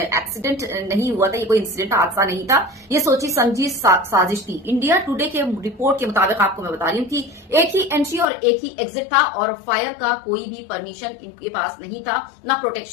नहीं हुआ था, ये कोई इंसिडेंट हादसा नहीं था, ये सोची समझी साजिश थी। इंडिया टुडे के रिपोर्ट के मुताबिक आपको मैं बता रही हूँ कि एक ही एंट्री और एक ही एग्जिट था और फायर का कोई भी परमिशन इनके पास नहीं था, ना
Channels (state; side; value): drops out; right; at 8.2 s